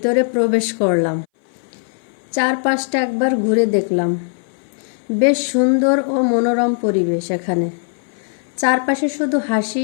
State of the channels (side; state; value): right; silent; 61 dB below the other